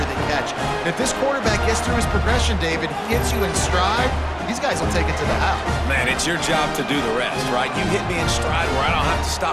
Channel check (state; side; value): identical; both; correlation 1.00